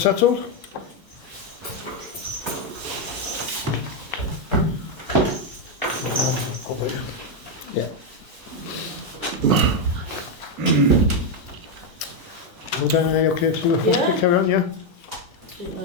Yeah. Well, then, are you okay to Yeah. carry on, yeah? Didn't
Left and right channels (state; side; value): normal; both; correlation 0.03